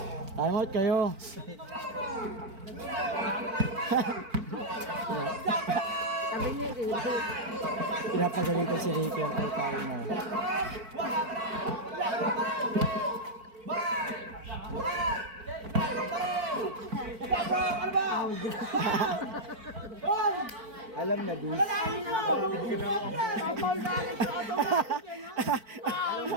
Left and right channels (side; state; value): left; late; 4.5 ms